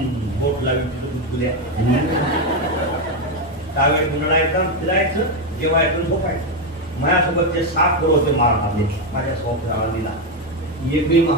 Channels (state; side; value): normal; both; correlation 0.07